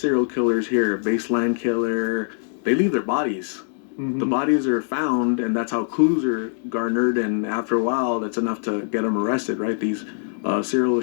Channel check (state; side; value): silent; right; digital silence